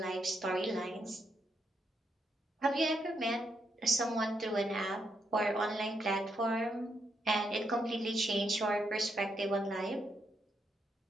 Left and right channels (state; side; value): normal; both; correlation 0.79